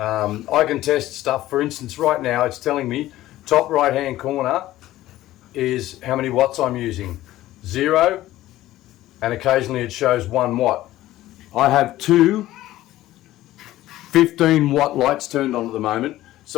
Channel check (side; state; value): right; quieter; 15.2 dB